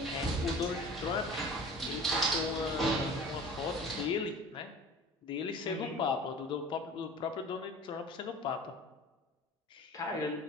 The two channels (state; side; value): normal; both; correlation 0.41